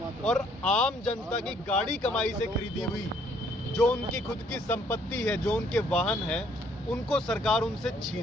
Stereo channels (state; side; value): normal; both; correlation 0.65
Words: और आम जनता की गाड़ी कमाई से खरीदी हुई जो उनकी खुद की संपत्ति है, जो उनके वाहन है, उनको सरकार उनसे